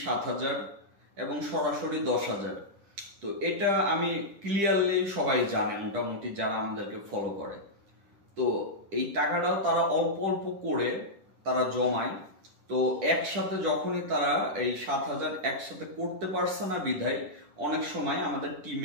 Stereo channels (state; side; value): late; left; 10 ms